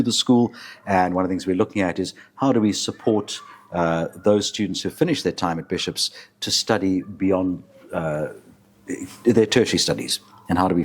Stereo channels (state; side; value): identical; both; correlation 1.00